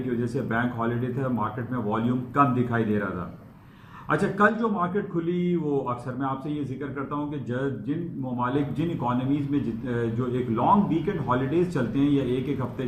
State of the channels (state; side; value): identical; both; correlation 1.00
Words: वजह से बैंक हॉलीडे था, मार्केट में वॉल्यूम कम दिखाई दे रहा था। अच्छा, कल जो मार्केट खुली वो अक्सर मैं आपसे ये जिक्र करता हूँ कि जिन ममालिक जिन इकोनॉमीज़ में जो एक लॉन्ग वीकेंड हॉलीडेज चलते हैं या एक हफ्ते